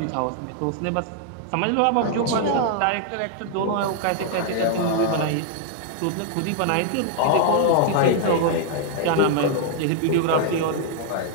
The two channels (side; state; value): both; different; correlation 0.00